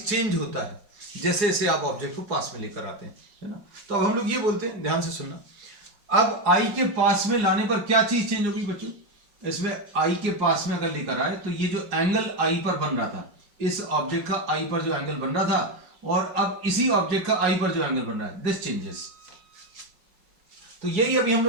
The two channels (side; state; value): left; late; 4.9 ms